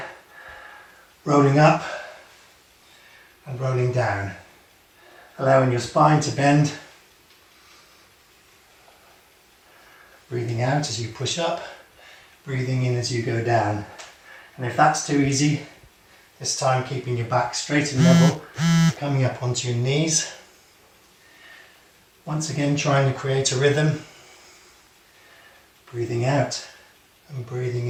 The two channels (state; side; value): identical; both; correlation 1.00